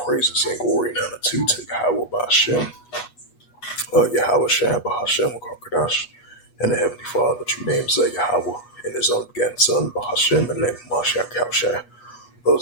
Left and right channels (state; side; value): late; right; 8.2 ms